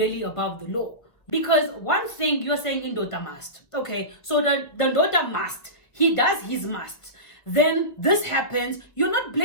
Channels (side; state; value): right; late; 1.4 ms